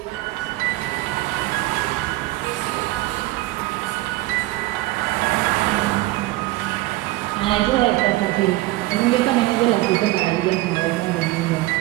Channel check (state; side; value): quieter; left; 18.6 dB